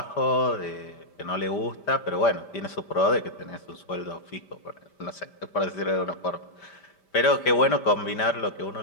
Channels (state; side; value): late; right; 5.1 ms